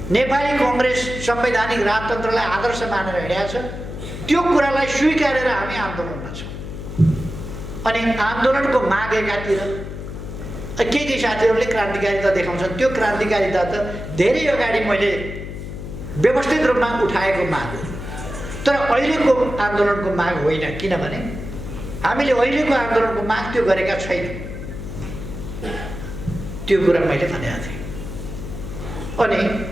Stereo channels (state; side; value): noise; left; hum, 9 dB below the sound